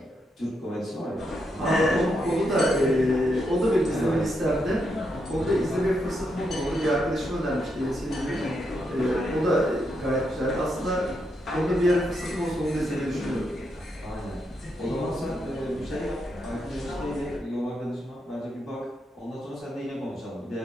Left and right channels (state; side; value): normal; both; correlation 0.81